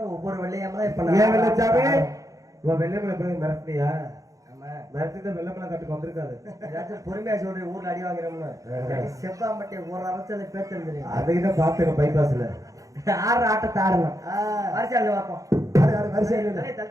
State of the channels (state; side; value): late; left; 0.16 ms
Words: ஒவ்வொரு வெள்ளையம்மா இப்ப ஏன் வெள்ளச்சாமி வெள்ளையம்மலை எப்படி மிரட்டியா? மிரட்டிதான் வெள்ளமலை கட்டுக்கு வந்திருக்காது. ஏதாச்சும் பொறுமையா சொல்றேன். ஊர்ல அடி வாங்குறோம்னு செவ்வாமட்டை ஒரு அரசல பேத்து அதுக்கிட்ட பாத்துக்க. பைபாஸ்ல ஆடுற ஆட்டத்தை ஆடணும். வரிசையில பார்ப்போம்.